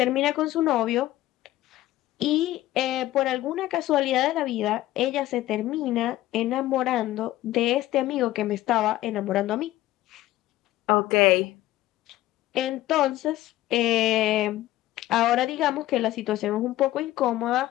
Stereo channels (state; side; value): quieter; right; 15.5 dB